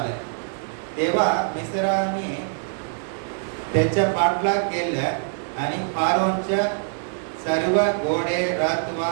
तेव्हा मिस्रांनी त्याच्या पाठलाग केला आणि फारोनच्या सर्व घोडे, रथ व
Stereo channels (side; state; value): left; silent; digital silence